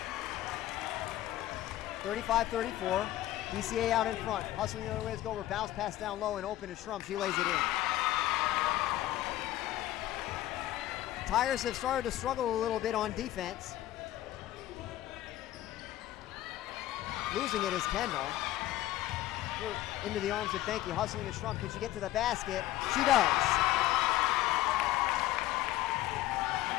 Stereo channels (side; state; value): right; quieter; 14.7 dB